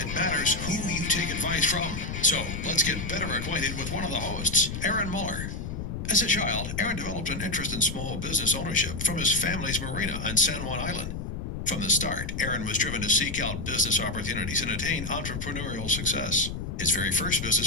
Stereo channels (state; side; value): noise; left; rumble, 5 dB below the sound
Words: matters who you take advice from. So let's get better acquainted with one of the hosts, Aaron Muller. As a child, Aaron developed an interest in small business ownership from his family's marina on San Juan Island. From the start, Aaron was driven to seek out business opportunities and attain entrepreneurial success. His very first